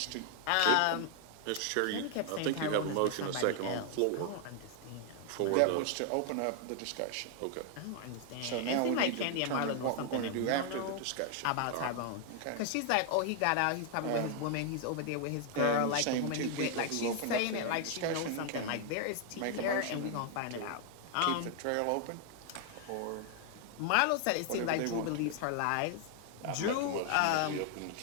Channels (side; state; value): both; different; correlation 0.00